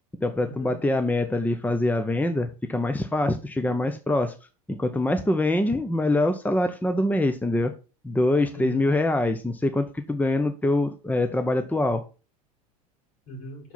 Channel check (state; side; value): normal; both; correlation 0.86